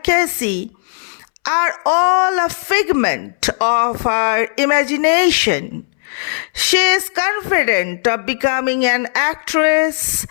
are all a figment of her imagination. She is confident of becoming an actress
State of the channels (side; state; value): right; silent; 67 dB below the other